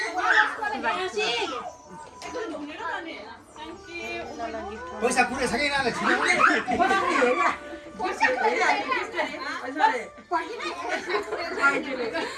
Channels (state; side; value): identical; both; correlation 1.00